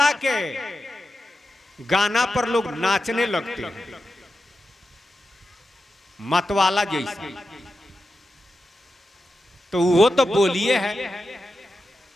के गाना पर लोग नाचने लगते हैं, मतवाला जैसे। तो वो तो बोलिए है,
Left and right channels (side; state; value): both; normal; correlation 0.90